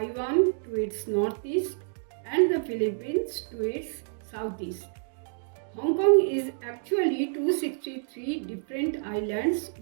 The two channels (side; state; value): left; silent; 59 dB below the other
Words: to its northeast, and the Philippines to its southeast. Hong Kong is actually 263 different islands